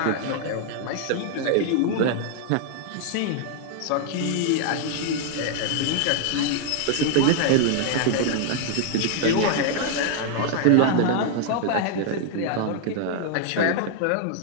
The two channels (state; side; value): different; both; correlation 0.00